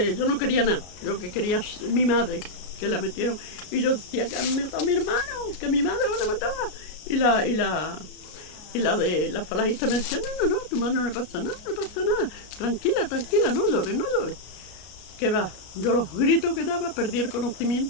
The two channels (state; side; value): late; right; 33 ms